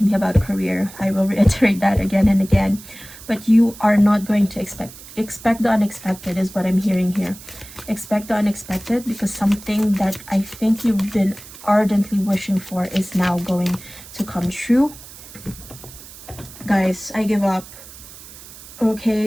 be about career. I will reiterate that again and again. But you are not going to expect the unexpected is what I'm hearing here. Expect the unexpected, because something that I think you've been ardently wishing for is now going to come true. Guys, I give up.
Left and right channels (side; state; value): right; noise; hiss, 17 dB below the sound